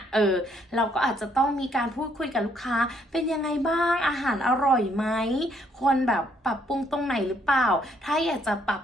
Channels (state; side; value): normal; both; correlation 0.69